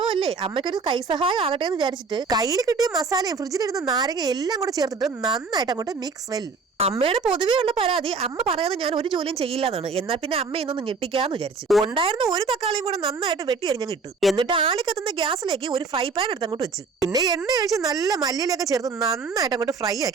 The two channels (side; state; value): left; quieter; 4.6 dB